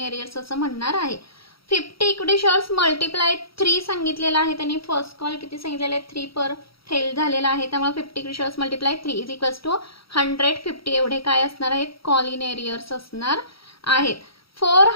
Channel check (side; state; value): right; late; 0.75 ms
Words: एरियर्स असं म्हणणार आहे. 50 इक्विटी शेअर्स मल्टिप्लाय 3 सांगितलेलं आहे त्यांनी. फर्स्ट कॉल किती सांगितलेलं आहे 3 पर फेल झालेला आहे, त्यामुळे 50 equity shares multiply 3 is equals to 150 एवढे काय असणार आहेत कॉलिन एरियर्स असणार आहेत.